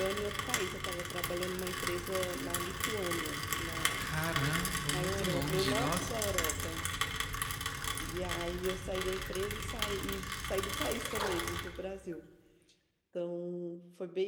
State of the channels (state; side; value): identical; both; correlation 1.00